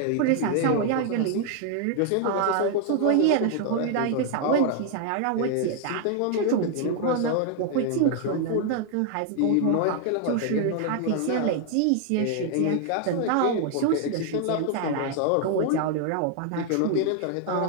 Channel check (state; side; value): different; both; correlation 0.00